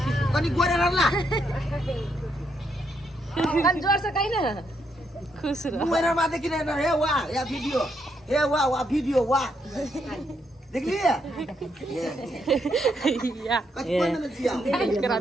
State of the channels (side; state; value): both; normal; correlation 0.77